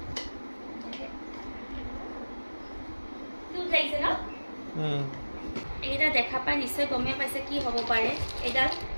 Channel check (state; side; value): inverted; both; correlation -1.00